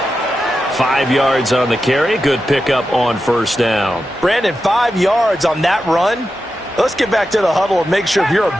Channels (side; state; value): both; normal; correlation 0.90